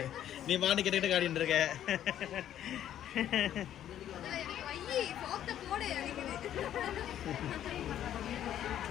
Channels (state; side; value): quieter; right; 11.1 dB